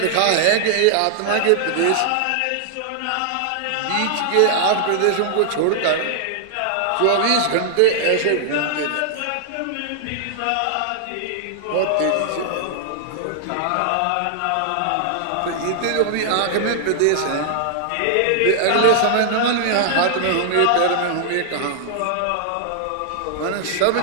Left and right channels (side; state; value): both; different; correlation -0.01